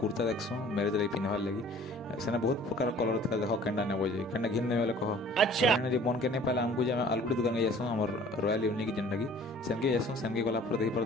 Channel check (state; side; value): normal; both; correlation 0.50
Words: कुर्ता देखसूँ मैरेज लगे पिंधवार लगी से बहुत प्रकार कलर था देख केन्टा नेब जे केन्टा घिन ने कह मन के नहीं पाला आमको जे आलगुड़ी दुकान के जासूँ आम रॉयल यूनिक जेनटा कि सेनके जासूँ सेनके गला देखी